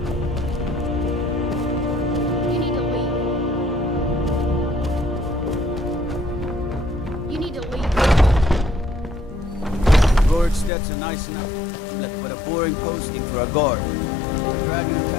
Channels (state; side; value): drops out; right; at 10.7 s